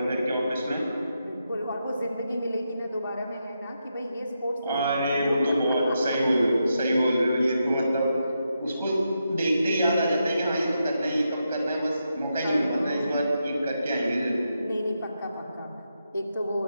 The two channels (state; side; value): inverted; both; correlation -0.85